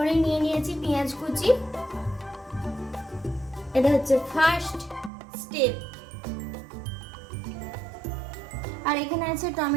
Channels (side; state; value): left; drops out; at 5.1 s